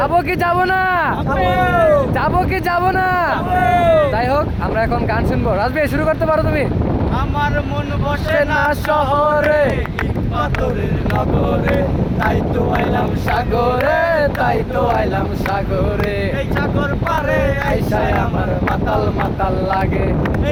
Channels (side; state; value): both; identical; correlation 1.00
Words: কি যাবো না? যাবো কি যাবো না? যাই হোক, আমরা এখন গান শুনবো। রাজবীর, শুরু করতে পারো তুমি। আমার মন বসে না শহরে, পাথরের নগরে, তাই তো আইলাম সাগরে, তাই তো আইলাম সাগরে। এই সাগর পারে আইসায় আমার মাতাল মাতাল লাগে,